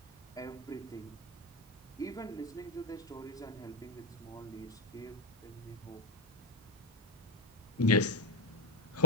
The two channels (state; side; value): normal; both; correlation -0.08